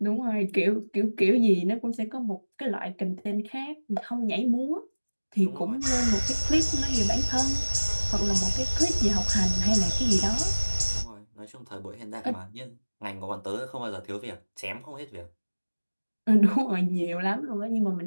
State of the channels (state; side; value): inverted; both; correlation -1.00